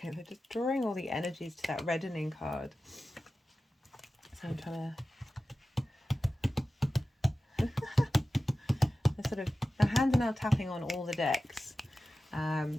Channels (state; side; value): normal; both; correlation 0.94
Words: Okay, they're just drawing all the energies to that reddening card. So I'm trying to... they're sort of... my hands are now tapping on all the decks.